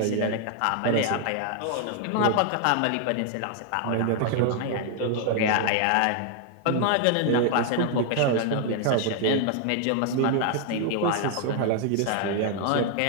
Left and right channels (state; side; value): different; both; correlation 0.00